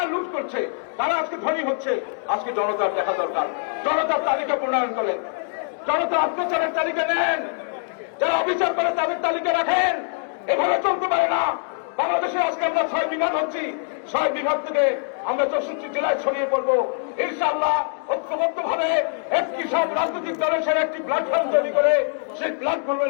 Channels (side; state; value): right; silent; 59 dB below the other